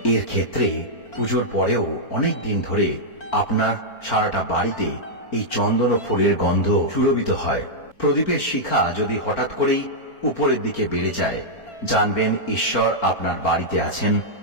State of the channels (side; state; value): right; late; 4.4 ms